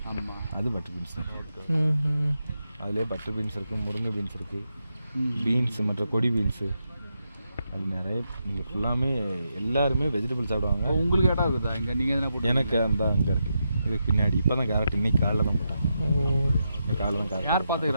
அது பட்டர் பீன்ஸ் தான். அதுலேயே பட்டர் பீன்ஸ் இருக்குது, முருங்கை பீன்ஸ் இருக்குது, பீன்ஸ் மற்ற கொடி பீன்ஸு, அது நிறைய. இங்கே ஃபுல்லாமே எல்லாருமே வெஜிடபிள் சாப்பிடுவாங்க. உங்களுக்கு இடம் இருக்குதா இங்கே? நீங்கள் எதனா போட்டு? எனக்கு அந்த அங்கே இருக்குது. இதுக்கு பின்னாடி இப்போ தான் கேரட் இன்னைக்கு காலையில் தான் போட்டாங்க. காலையில் தான் கேரட். யார்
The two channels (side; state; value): both; inverted; correlation -0.85